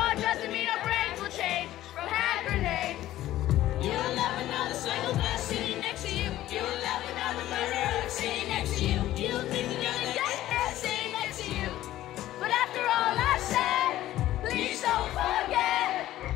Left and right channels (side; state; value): right; quieter; 14.3 dB